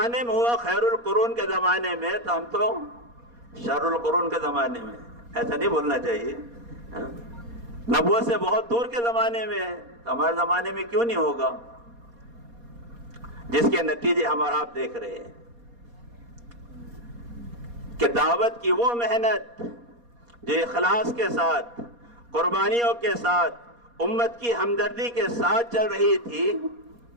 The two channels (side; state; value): left; late; 4.2 ms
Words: میں ہوا خیر القرون کے زمانے میں، تو ہم تو شر القرون کے زمانے میں، ایسا نہیں بولنا چاہیے۔ نہ نبوت سے بہت دور کے زمانے میں ہے، تو ہمارے زمانے میں کیوں نہیں ہوگا؟ جس کے نتیجے ہم اور آپ دیکھ رہے ہیں کہ دعوت کی وہ محنت جو اخلاص کے ساتھ، قربانیوں کے ساتھ، امت کی ہمدردی کے ساتھ چل رہی تھی